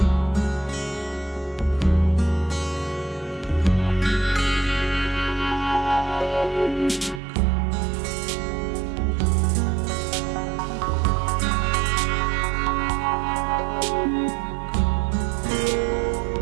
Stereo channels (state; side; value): drops out; left; at 7.2 s